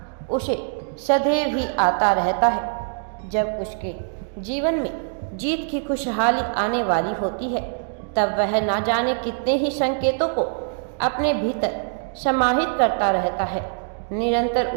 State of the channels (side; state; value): left; silent; digital silence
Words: उसे सदैव ही आता रहता है। जब उसके जीवन में जीत की खुशहाली आने वाली होती है, तब वह ना जाने कितने ही संकेतों को अपने भीतर समाहित करता रहता है। निरंतर